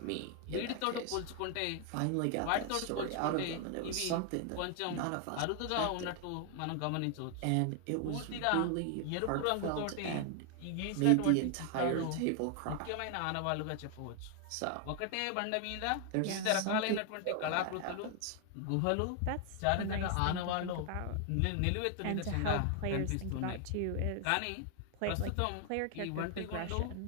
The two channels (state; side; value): different; both; correlation 0.00